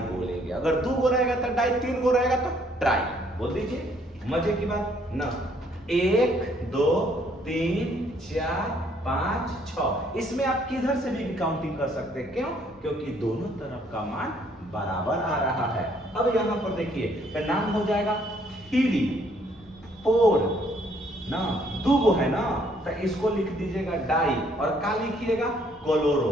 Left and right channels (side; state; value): both; normal; correlation 0.65